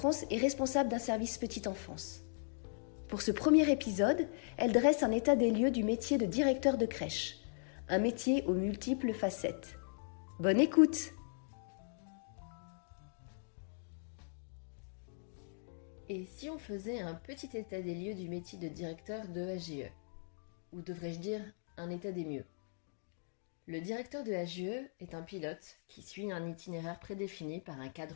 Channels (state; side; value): silent; right; digital silence